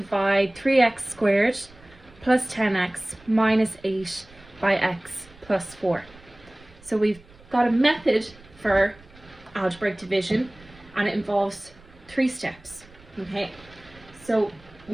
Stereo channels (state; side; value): noise; right; rumble, 24 dB below the sound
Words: 3x squared plus 10x minus 8 by x plus 4. So we've got a method for algebraic division and it involves 3 steps. Okay, so